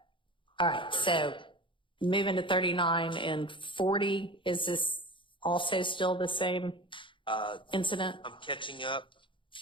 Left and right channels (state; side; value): late; right; 0.24 ms